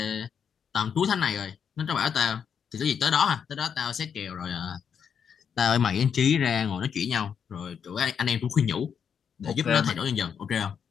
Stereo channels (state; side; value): quieter; right; 7.3 dB